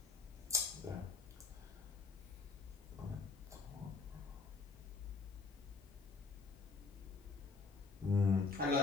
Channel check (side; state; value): right; quieter; 4.2 dB